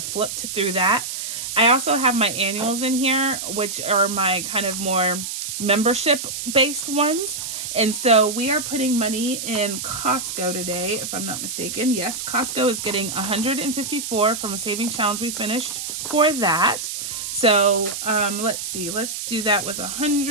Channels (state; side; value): noise; right; hiss, 5 dB below the sound